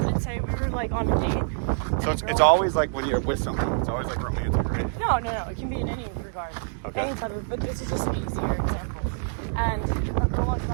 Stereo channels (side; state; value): left; silent; digital silence